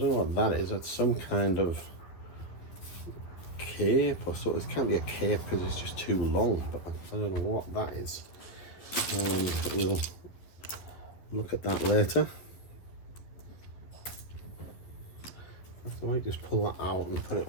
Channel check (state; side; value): late; right; 11 ms